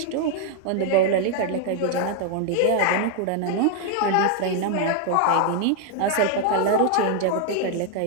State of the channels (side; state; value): both; different; correlation 0.00